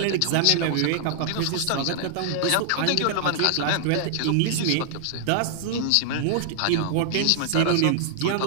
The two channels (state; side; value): different; both; correlation -0.01